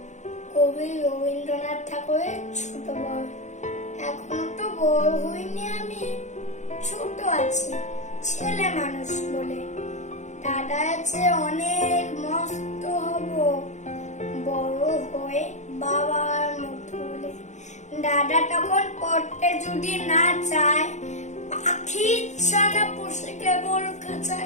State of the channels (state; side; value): late; right; 0.34 ms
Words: কবি রবীন্দ্রনাথ ঠাকুরের ছোট বড়। এখনো তো বড় হইনি, আমি ছোট আছি, ছেলে মানুষ বলে। দাদা আছে অনেক, মস্ত হব বড় হয়ে বাবার মতো বলে। দাদা তখন পড়তে যদি না চায়, পাখি ছানা পুষে কেবল